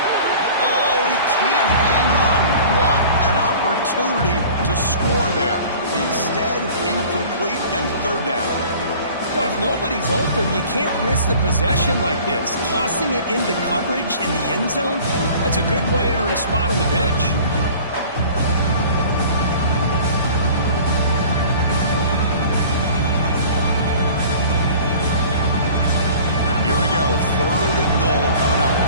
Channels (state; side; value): inverted; both; correlation -0.45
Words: Oh, he can't hang on. What an opportunity to score there. Instead, incomplete and third down. Well, if nobody's open, you can't risk the possession like this. Tossing it into coverage in the end zone, that's a good way to earn a spot on the bench. Here we go, third and goal coming up.